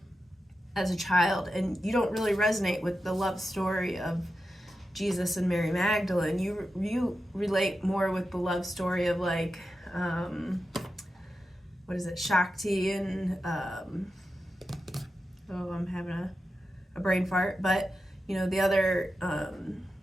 as a child, and you don't really resonate with the love story of Jesus and Mary Magdalene. You relate more with the love story of like what is it, Shakti and I'm having a brain fart, but the other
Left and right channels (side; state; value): both; normal; correlation 0.90